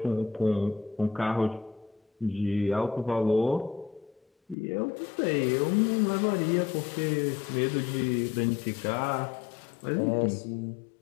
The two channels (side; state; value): right; drops out; at 4.5 s